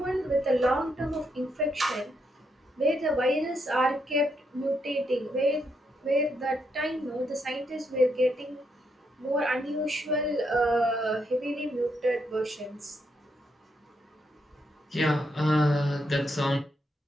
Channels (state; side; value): normal; both; correlation 0.79